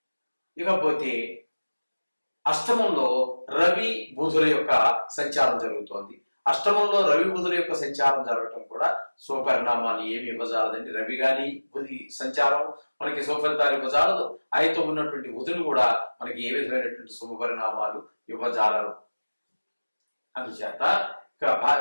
ఇకపోతే అష్టమంలో రవి బుధుల యొక్క సంచారం జరుగుతోంది. అష్టమంలో రవి బుధుల యొక్క సంచారం జరగటం కూడా శుభపరిణామాలు ఏమి ఇవ్వజాలదండి. రవి గాని బుధి సంచారం మనకి శుభఫలితాలు ఇవ్వజాలదు. ఆయనతో ఉన్నటువంటి బుధులు కూడా మనకి ఏ విధమైనటువంటి శుభపరిణామాలు ఇవ్వజాలరు. అందుచేత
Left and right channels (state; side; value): inverted; both; correlation -1.00